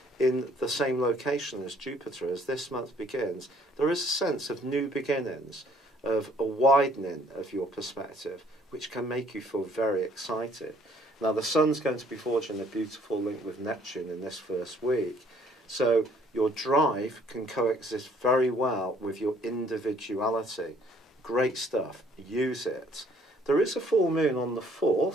in the same location as Jupiter as this month begins, there is a sense of new beginnings, of a widening of your perspective, which can make you feel very excited. Now, the Sun's going to be forging a beautiful link with Neptune in this first week, so your drive can coexist very well with your individuality. Great stuff. Use it. There is a full moon on the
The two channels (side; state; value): both; normal; correlation 0.61